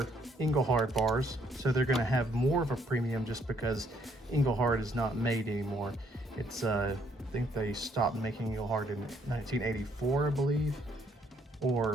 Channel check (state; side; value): normal; both; correlation 0.68